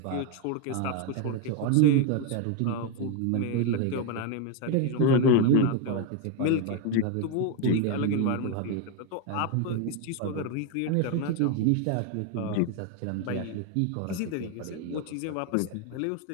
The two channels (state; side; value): different; both; correlation 0.01